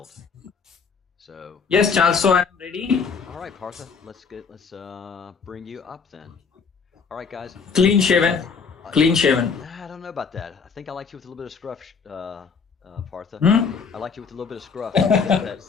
So Yes, Charles. So I'm ready. all right, Partha, let's bring you up then. All right, guys. Clean shaven. Clean shaven. I don't know about that. I think I liked you with a little bit of scruff, Partha. Hmm? I liked you with a little bit of scruff.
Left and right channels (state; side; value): quieter; right; 5.6 dB